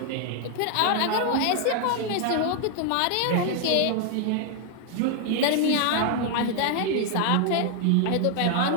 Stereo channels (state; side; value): different; both; correlation 0.00